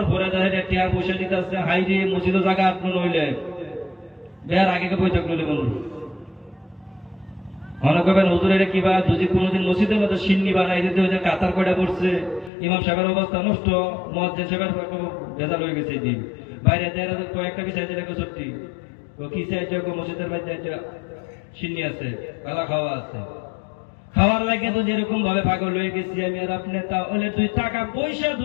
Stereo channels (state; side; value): drops out; right; at 12.5 s